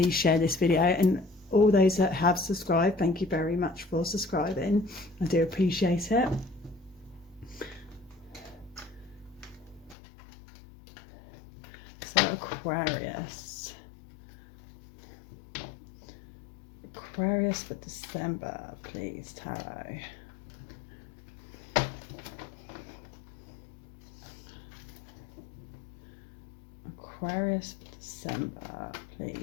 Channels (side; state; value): right; drops out; at 10.0 s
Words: share this video, and all those that have subscribed, thank you very much for subscribing. I do appreciate it. So Aquarius for December, please, Tarot. Aquarius for December,